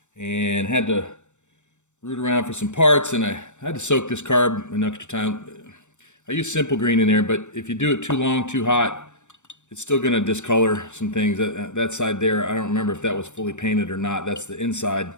and had to root around for some parts, and I had to soak this carb an extra time. I use simple green in there, but if you do it too long, too hot, it's still going to discolor some things. That side there, I don't remember if that was fully painted or not. That's the inside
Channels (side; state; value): right; late; 0.84 ms